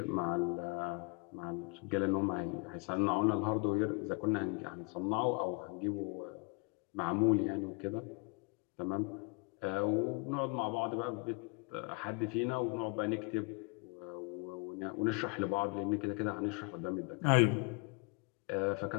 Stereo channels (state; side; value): quieter; right; 31.1 dB